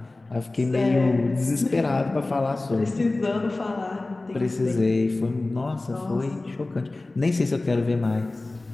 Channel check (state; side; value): quieter; right; 3.0 dB